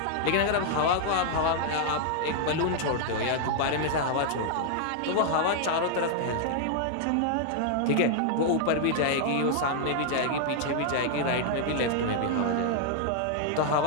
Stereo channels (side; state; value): both; different; correlation 0.00